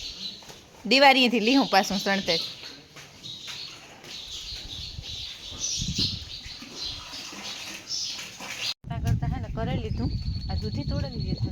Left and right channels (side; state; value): both; identical; correlation 1.00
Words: દિવાળીએથી લીહું પાછું સણતર. કરતા હે ને કરી લીધું. આ દૂધી તોડી